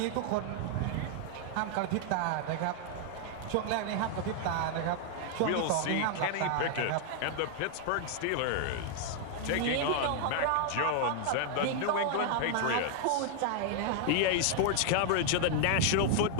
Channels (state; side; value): different; both; correlation 0.00